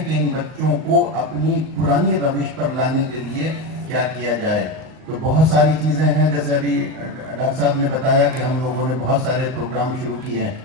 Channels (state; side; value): late; left; 38 ms